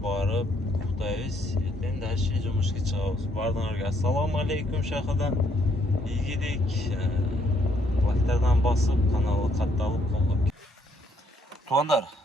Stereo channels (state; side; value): normal; both; correlation 0.70